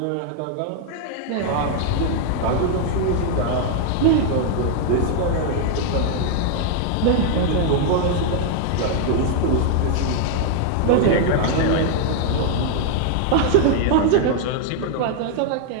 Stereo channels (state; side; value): different; both; correlation 0.00